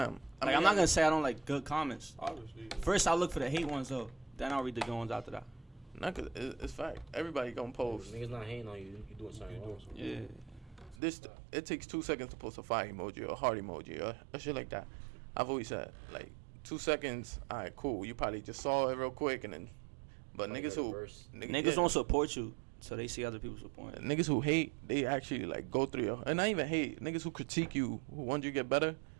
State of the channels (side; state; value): left; drops out; at 11.0 s